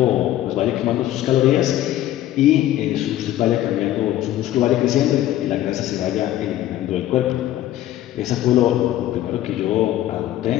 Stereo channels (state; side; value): quieter; right; 13.4 dB